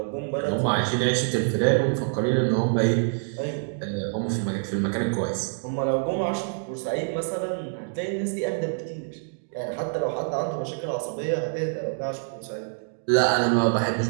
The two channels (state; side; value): silent; left; digital silence